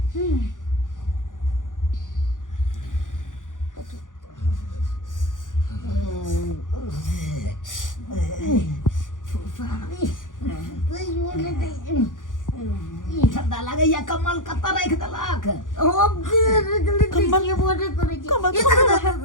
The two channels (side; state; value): right; late; 0.88 ms